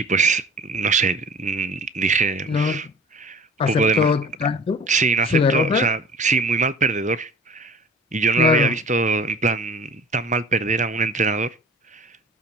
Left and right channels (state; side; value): normal; both; correlation 0.43